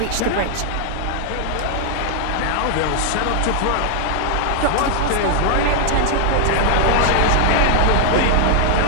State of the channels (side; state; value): both; different; correlation 0.00